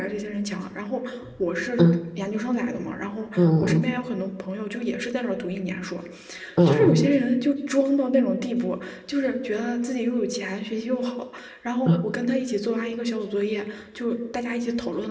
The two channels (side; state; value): both; identical; correlation 1.00